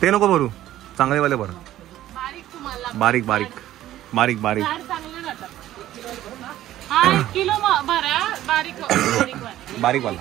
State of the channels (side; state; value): left; quieter; 13.6 dB